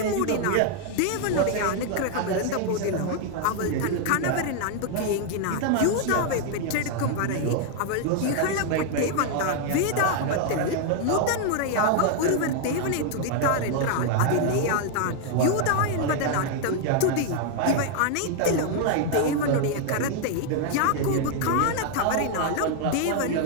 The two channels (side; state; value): both; different; correlation 0.00